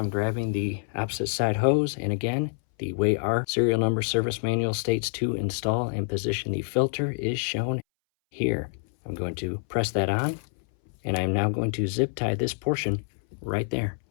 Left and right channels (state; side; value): silent; right; 60 dB below the other